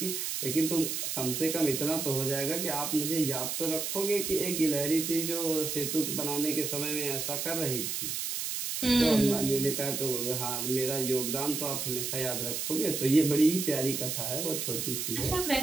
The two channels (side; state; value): right; noise; hiss, 2 dB below the sound